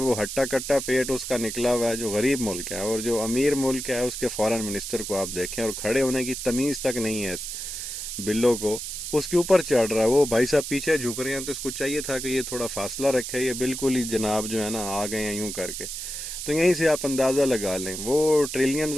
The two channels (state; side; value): noise; right; hiss, 6 dB below the sound